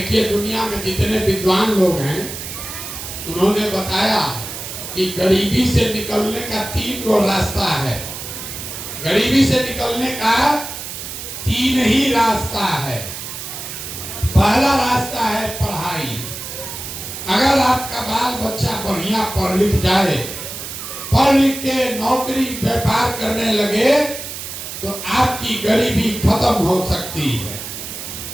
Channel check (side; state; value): right; noise; hiss, 9 dB below the sound